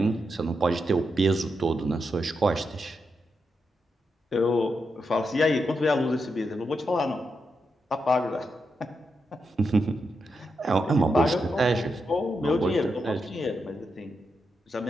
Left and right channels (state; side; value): normal; both; correlation 0.85